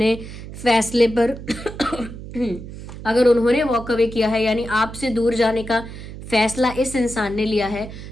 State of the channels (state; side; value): noise; right; hum, 12 dB below the sound